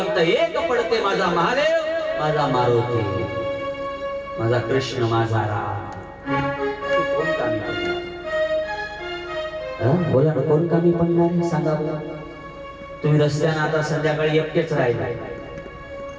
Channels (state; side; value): identical; both; correlation 1.00